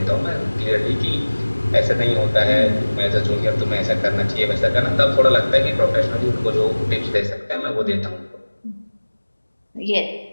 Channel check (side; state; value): both; inverted; correlation -1.00